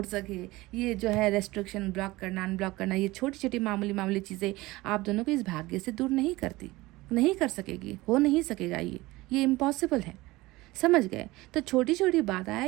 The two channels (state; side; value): quieter; left; 19.9 dB